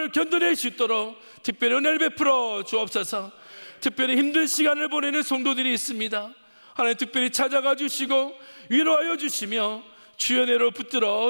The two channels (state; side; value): inverted; both; correlation -1.00